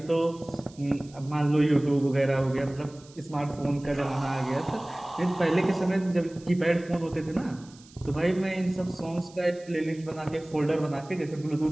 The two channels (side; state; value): right; noise; hiss, 24 dB below the sound